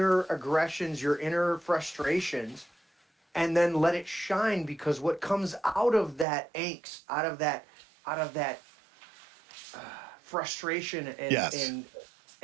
aggressions, your inner frustrations, and then let it shine, because what comes out of that angst, out of that frustration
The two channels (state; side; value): drops out; left; at 6.2 s